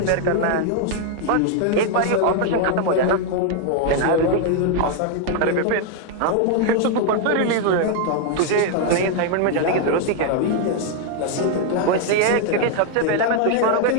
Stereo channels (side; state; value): both; different; correlation 0.00